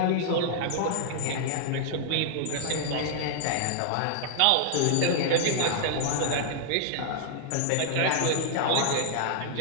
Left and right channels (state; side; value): different; both; correlation -0.01